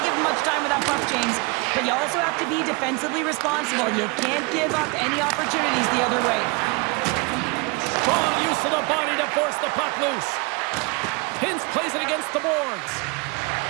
give them much time with that puck, James, but you also have to be defensively responsible. You can't give up any opportunities the other way. Strong use of the body to force the puck loose. Hintz plays it against the boards.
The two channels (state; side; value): quieter; left; 28.7 dB